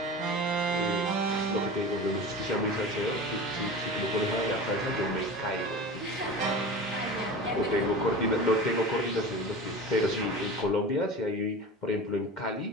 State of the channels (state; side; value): normal; both; correlation 0.33